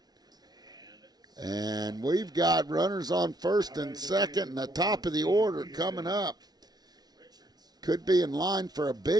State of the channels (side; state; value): left; late; 0.19 ms